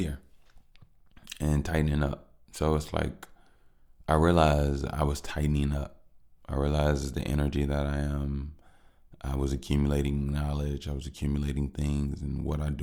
and tightening up. So it's like I realized I was tightening up. I realized the energy that I was accumulating knowledge. I was accumulating things, and what I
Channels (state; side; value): identical; both; correlation 1.00